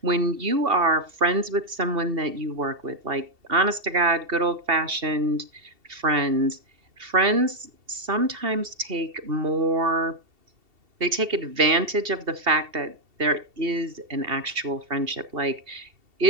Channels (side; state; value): left; late; 2.7 ms